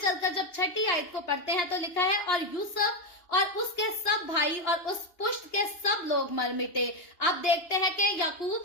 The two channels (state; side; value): late; right; 2.8 ms